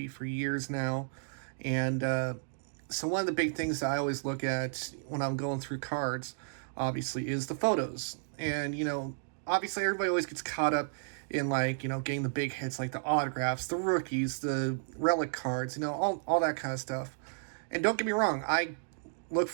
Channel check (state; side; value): silent; left; digital silence